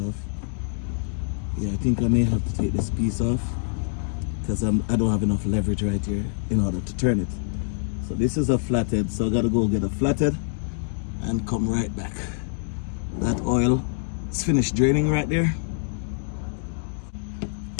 Yeah, I think I may have to take this piece off because I don't have enough leverage right here in order to turn it. So this is a flathead, so I gotta go get a flathead and come right back. That oil is finished draining right there.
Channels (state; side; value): silent; right; 61 dB below the other